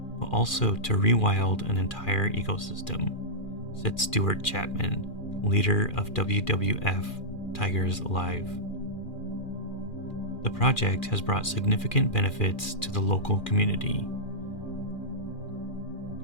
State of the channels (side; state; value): right; late; 2.4 ms